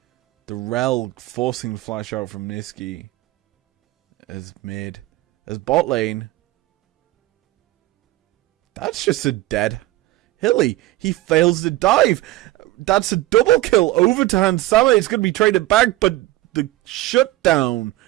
the Rel forcing the flash out from Niski. As mid. As bot lane, that's just a dead Hilly. He fails the dive. That's a double kill over to Hansama. It's going to be traded back, but the shutdown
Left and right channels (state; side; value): quieter; left; 17.2 dB